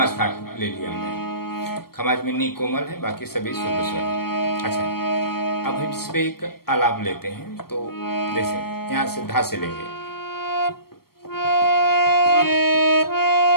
ठाट ले लिया हमने। खमाज में नी कोमल है, बाकी सभी शुद्ध स्वर है। अच्छा, अब हम इस पे एक आलाप लेते हैं। तो जैसे यहाँ से धा से लेंगे,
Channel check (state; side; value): late; right; 0.94 ms